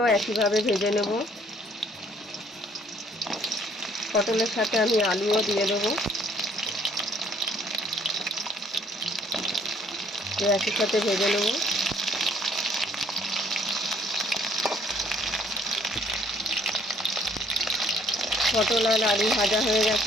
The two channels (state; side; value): normal; both; correlation 0.61